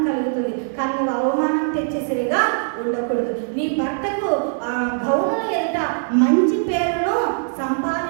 కలుగుతుంది. కానీ నువ్వు అవమానం తెచ్చే స్త్రీగా ఉండకూడదు. నీ భర్తకు గౌనుల ఎదుట మంచి పేరును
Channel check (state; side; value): silent; left; 61 dB below the other